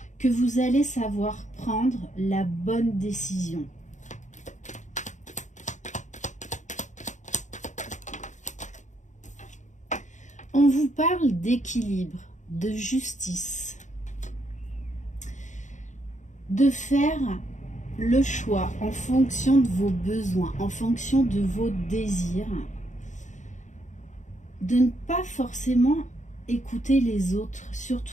que vous allez savoir prendre la bonne décision. On vous parle d'équilibre, de justice, de faire le choix en fonction de vos besoins, en fonction de vos désirs, de ne pas forcément écouter les autres,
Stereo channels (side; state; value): right; late; 0.35 ms